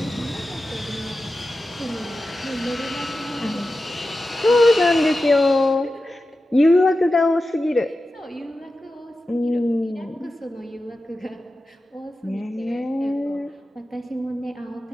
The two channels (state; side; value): normal; both; correlation 0.93